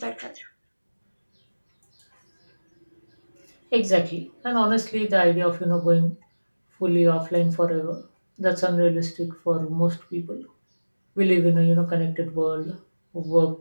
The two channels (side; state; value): both; inverted; correlation -1.00